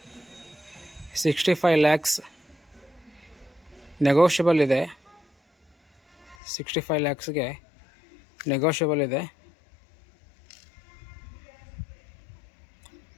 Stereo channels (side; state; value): right; drops out; at 6.4 s